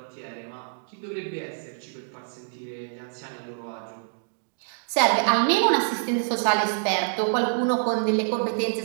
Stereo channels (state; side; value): silent; left; digital silence